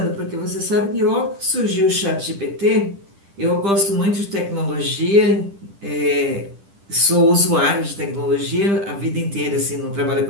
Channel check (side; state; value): left; late; 10 ms